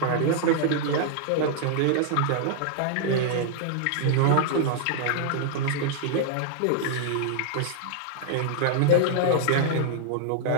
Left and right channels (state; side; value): different; both; correlation -0.01